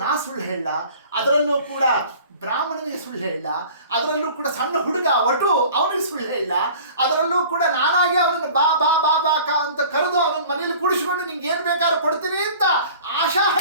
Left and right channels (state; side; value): inverted; both; correlation -0.46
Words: ನಾ ಸುಳ್ಳು ಹೇಳ, ಅದರಲ್ಲೂ ಕೂಡ ಬ್ರಾಹ್ಮಣನಿಗೆ ಸುಳ್ಳು ಹೇಳ, ಅದರಲ್ಲೂ ಕೂಡ ಸಣ್ಣ ಹುಡುಗ ಒಟ್ಟು ಅವನಿಗೆ ಸುಳ್ಳು ಹೇಳ, ಅದರಲ್ಲೂ ಕೂಡ ನಾನಾಗಿ ಅವನನ್ನು ಬಾ ಬಾ ಬಾ ಬಾಕ ಅಂತ ಕರೆದು ಅವನ ಮನೇಲಿ ಕೂಡಿಸ್ಕೊಂಡು ನಿಂಗೆ ಏನು ಬೇಕಾದ್ರೂ ಕೊಡ್ತೀನಿ ಅಂತ ಆಶಾ